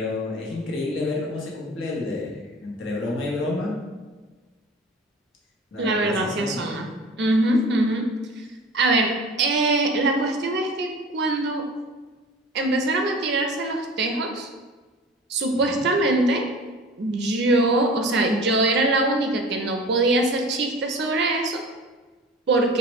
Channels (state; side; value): normal; both; correlation 0.39